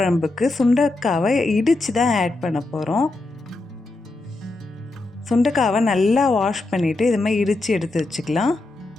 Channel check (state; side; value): quieter; right; 3.0 dB